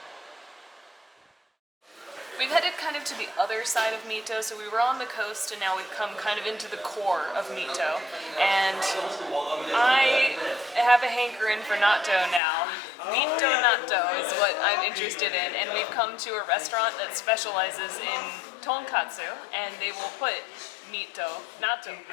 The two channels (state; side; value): drops out; right; at 12.4 s